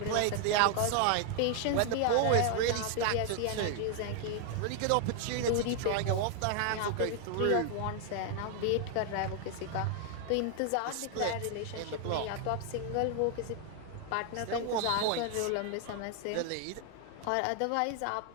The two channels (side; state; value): both; different; correlation 0.00